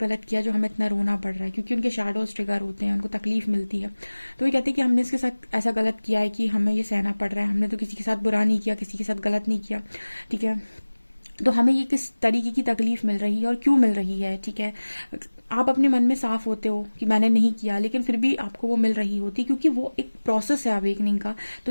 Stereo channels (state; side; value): inverted; both; correlation -1.00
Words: किया जो हमें इतना रोना पड़ रहा है, क्योंकि उनके शैडोज ट्रिगर होते हैं, उनको तकलीफ मिलती है। तो ये कहते हैं कि हमने इसके साथ ऐसा गलत किया है कि हमें ये सहना पड़ रहा है, हमने तो किसी के साथ बुरा नहीं किया, किसी के साथ गलत नहीं किया, ठीक है, तो हमें ये किस तरीके की तकलीफ मिल रही है और क्यों मिल रही है, ठीक है। आप अपने मन में साफ होते हो कि मैंने नहीं किया, लेकिन फिर भी आपको वो मिल रही होती है, क्योंकि वो एक प्रोसेस है अवेकनिंग का। तो